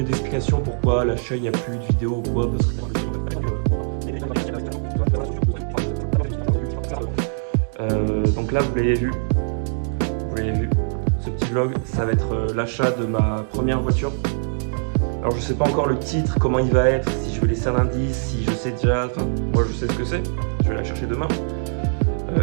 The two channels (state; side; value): silent; left; digital silence